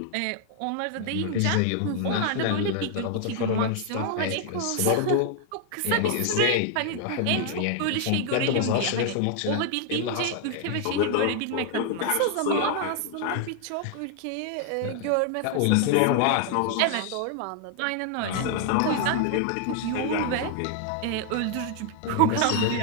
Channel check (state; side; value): different; both; correlation 0.00